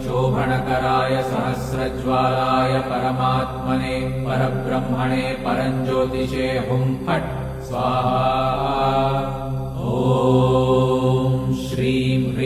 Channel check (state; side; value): identical; both; correlation 1.00